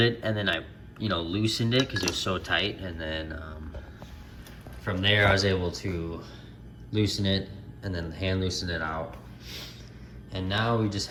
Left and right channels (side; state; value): both; identical; correlation 1.00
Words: it, and then I, loosened it because it was so tight, and then from there I was able to loosen it and then hand loosen it out. And now we just